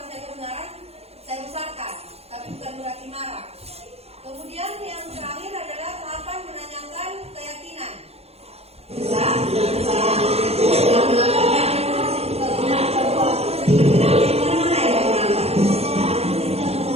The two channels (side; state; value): left; late; 0.30 ms